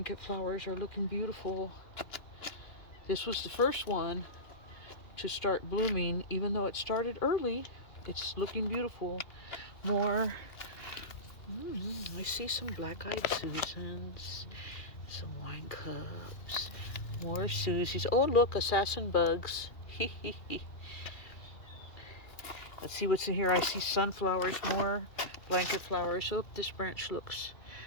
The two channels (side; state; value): right; late; 2.4 ms